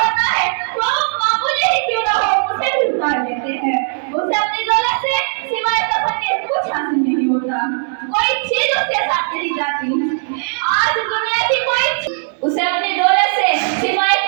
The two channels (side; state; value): left; silent; digital silence